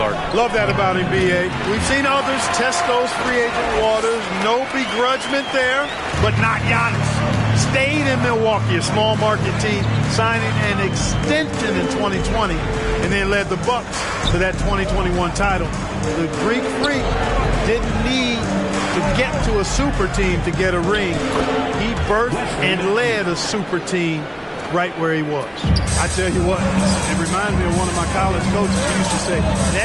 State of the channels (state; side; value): identical; both; correlation 1.00